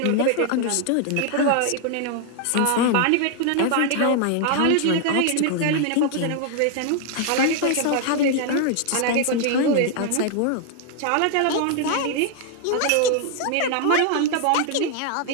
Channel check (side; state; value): both; different; correlation 0.00